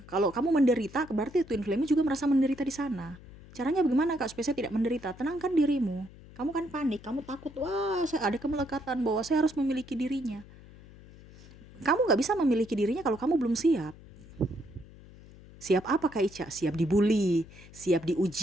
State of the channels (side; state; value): left; noise; hum, 20 dB below the sound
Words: kalau kamu menderita, berarti twin flame juga merasa menderita di sana. Caranya bagaimana Kak supaya saya tidak menderita? Tenangkan dirimu. Kamu kan panik, kamu takut, wah saya ada kemelekatan bahwa saya harus memiliki dirinya. Kamu gak bisa memiliki dirinya kalau kamu belum siap. Siap apa Kak Ica? Siap dibully, siap